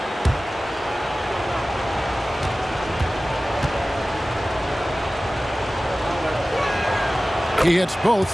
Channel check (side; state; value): both; normal; correlation 0.97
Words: He hits both